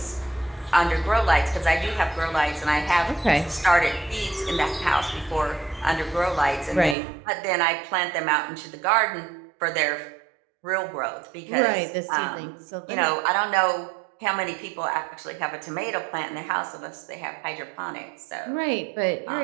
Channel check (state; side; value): drops out; left; at 7.0 s